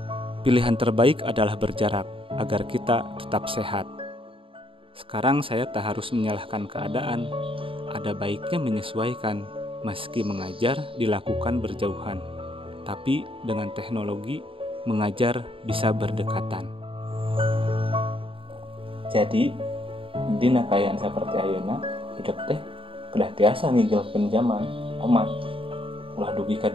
Pilihan terbaik adalah berjarak agar kita tetap sehat. Sekarang saya tak harus menyalahkan keadaan. Ada baiknya menyesuaikan, meski mengajar dilakukan berjauhan. Tapi dengan teknologi, mengajar bisa berdekatan. Jadi, dina kayaan seperti ayeuna, hidup teh kedah tiasa ngigel zaman, omat. Ulah dugi ka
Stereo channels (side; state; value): left; late; 0.26 ms